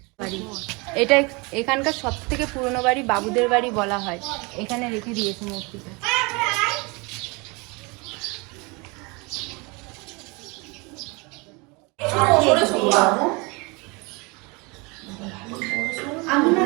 এটা এখানকার সব থেকে পুরনো বাড়ি বাবুদের বাড়ি বলা হয়। এখানে রেখে দিয়েছে মূর্তিটা। আমি না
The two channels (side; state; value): left; quieter; 27.9 dB